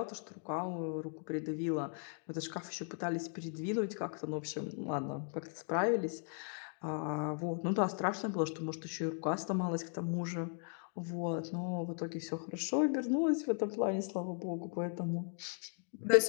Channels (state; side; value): silent; right; 53 dB below the other